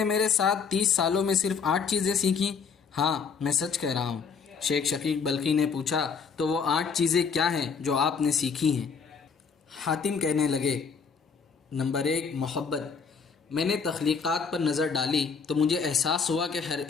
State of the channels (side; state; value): right; quieter; 5.8 dB